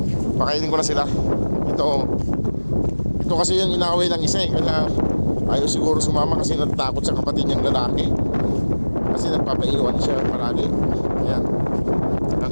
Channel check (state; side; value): inverted; both; correlation -1.00